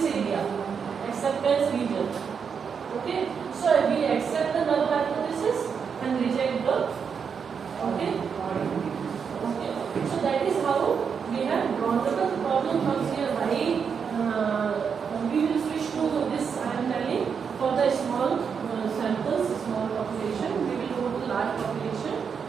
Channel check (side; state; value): left; quieter; 6.5 dB